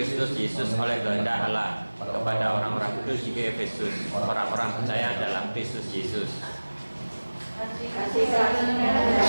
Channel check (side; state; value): both; inverted; correlation -1.00